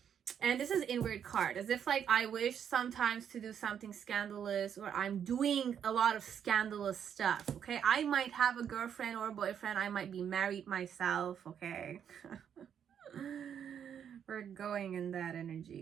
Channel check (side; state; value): left; quieter; 8.5 dB